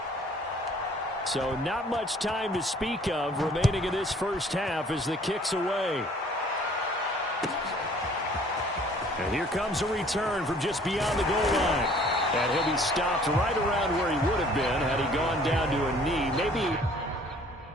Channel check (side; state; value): both; normal; correlation 0.55